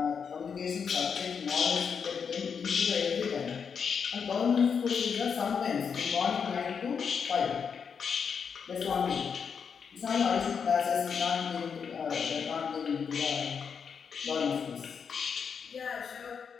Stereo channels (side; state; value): right; quieter; 6.5 dB